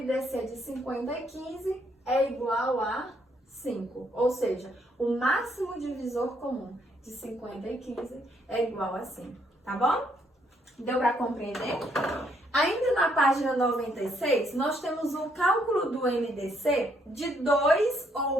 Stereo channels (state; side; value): normal; both; correlation 0.71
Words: de 50 e 15 é igual a 5. Ou seja, o máximo divisor comum de 50 e 15 é igual a 5. Tá bom? Deu para compreender? Ainda na página 96, nós temos o cálculo do MDC de 2 ou